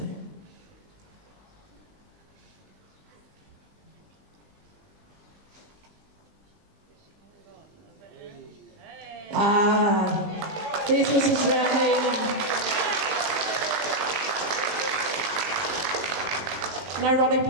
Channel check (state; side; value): late; left; 20 ms